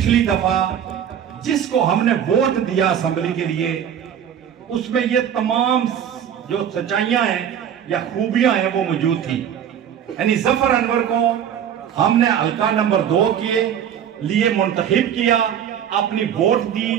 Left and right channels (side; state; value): left; quieter; 9.1 dB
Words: दफा जिसको हमने वोट दिया असेंबली के लिए, उसमें ये तमाम जो सच्चाइयां हैं या खूबियां हैं वो मौजूद थी। यानी ज़फ़र अनवर को हमने हल्का नंबर 2 के लिए मुंतखब किया, अपनी वोट दी।